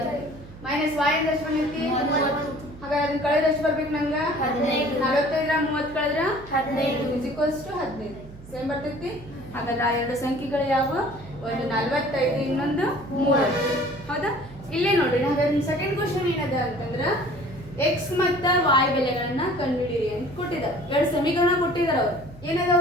ಮೈನಸ್ y ಅಂದ್ರೆ ಎಷ್ಟು ಬಂದೈತಿ? 30. ಹಾಗಾದ್ರೆ ಅದನ್ನ ಕಳೆದ್ರೆ ಎಷ್ಟು ಬರ್ಬೇಕು ನಂಗ? 15. 45 30 ಕಳೆದ್ರ 15 ಇಸ್ ಈಕ್ವಲ್ಸ್ ಟು 15. ಸೇಮ್ ಬರ್ತೈತಿ. ಹಾಗಾದ್ರೆ ಆ ಎರಡು ಸಂಖ್ಯೆಗಳು ಯಾವ? ಒಂದು 45, ಇನ್ನೊಂದು 30. ಹೌದಾ? ಇಲ್ಲೇ ನೋಡ್ರಿ. ಹಾಗಾದ್ರೆ ಸೆಕೆಂಡ್ ಕ್ವಶನ್ ಏನದ ಅಂತಂದ್ರ x ಮತ್ತು y ಬೆಲೆಗಳನ್ನ ಕಂಡುಹಿಡಿಯಿರಿ ಅಂತ ಕೊಟ್ಟಿದ್ದಾರೆ. ಆಯ್ತು, ಎರಡು ಸಮೀಕರಣ ಕೊಟ್ಟಿದ್ದಾರೆ ಅವರು. ಏನದಾವ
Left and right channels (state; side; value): noise; right; hum, 18 dB below the sound